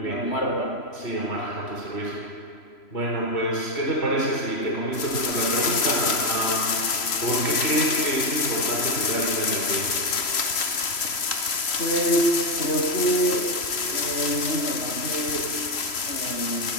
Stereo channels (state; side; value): late; right; 3.0 ms